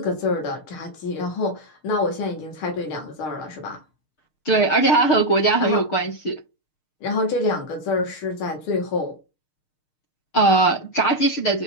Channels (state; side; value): late; right; 6.5 ms